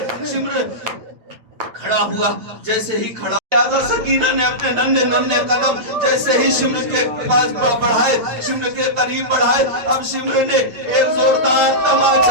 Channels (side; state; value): left; late; 8.6 ms